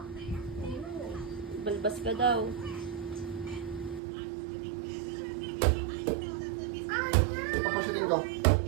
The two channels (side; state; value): left; drops out; at 4.0 s